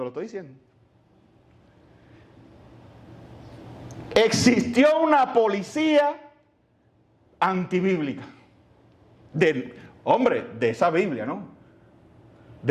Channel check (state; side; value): identical; both; correlation 1.00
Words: lo estoy diciendo. Existió una policía antibíblica. De esa Biblia, ¿no?